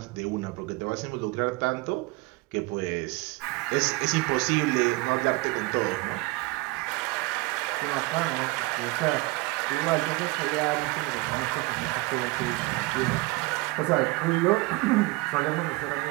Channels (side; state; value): left; quieter; 23.2 dB